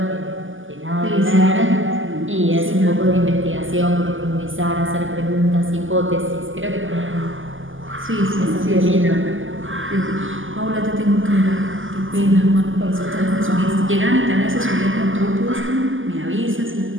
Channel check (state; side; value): late; left; 0.58 ms